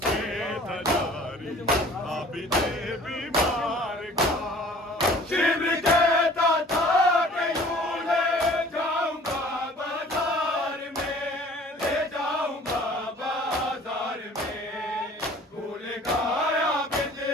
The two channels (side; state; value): both; normal; correlation 0.50